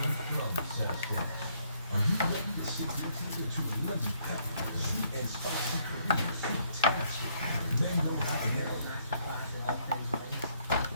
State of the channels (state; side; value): inverted; both; correlation -0.69